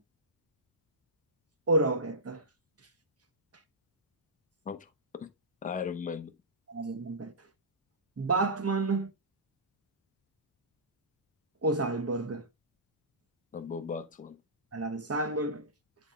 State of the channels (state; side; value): normal; both; correlation -0.17